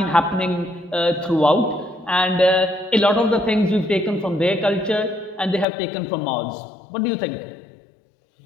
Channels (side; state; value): right; drops out; at 5.7 s